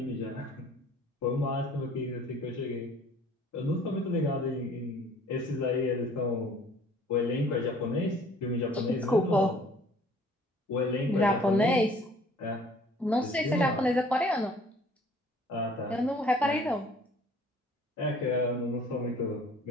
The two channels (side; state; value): both; normal; correlation 0.54